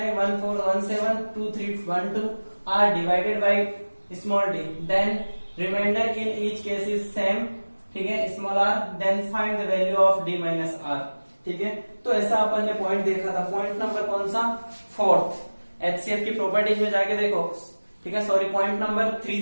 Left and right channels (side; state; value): both; inverted; correlation -1.00